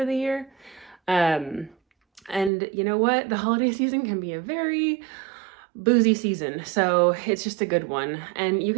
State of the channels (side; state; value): left; drops out; at 2.5 s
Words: the year. And you know what? The holiday season can be a very boozy season, so it's just a good one. And you